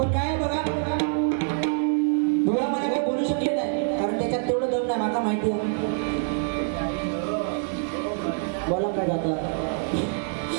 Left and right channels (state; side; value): silent; left; 56 dB below the other